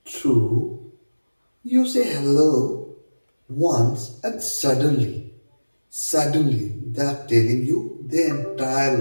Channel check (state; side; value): inverted; both; correlation -1.00